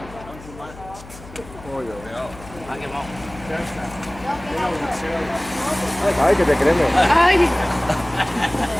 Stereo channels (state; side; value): noise; left; hum, 18 dB below the sound